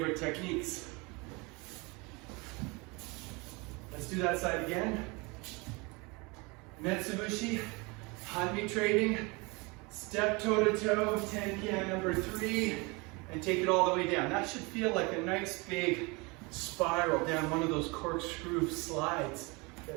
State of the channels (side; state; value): left; quieter; 27.3 dB